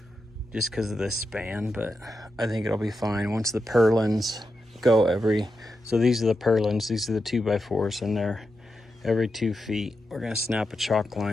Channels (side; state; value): both; normal; correlation 0.88